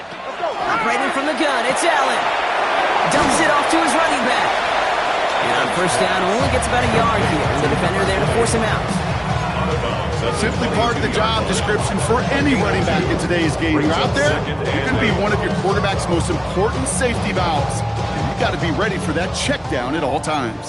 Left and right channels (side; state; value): both; identical; correlation 1.00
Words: from the gun, it's Allen. Dumps it off to his running back. And on first down, only gets about a yard here. And the defender there to force him out. Simply part of the job description for any running back in today's game. You're out there, you're going to be one of your quarterback's most important safety valves. And you've got to be ready for that check down at all